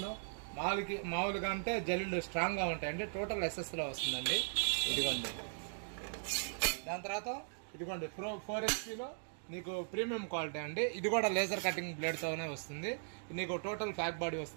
మామూలుగా అంటే జల్లులు స్ట్రాంగ్గా ఉంటాయండి. టోటల్ ఎస్ఎస్లో వస్తుందండి. ఇదిగోండి. దాని తర్వాత ఇదిగోండి 4 HPలో నీకు ప్రీమియం క్వాలిటీ అండి. ఇది కూడా లేజర్ కటింగ్ బ్లేడ్తోనే వస్తుంది. నీకు టోటల్ ఫ్యాక్ బాడీ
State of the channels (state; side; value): silent; left; digital silence